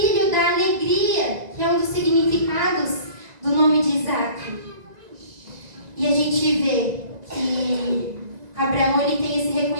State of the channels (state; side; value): late; left; 1.9 ms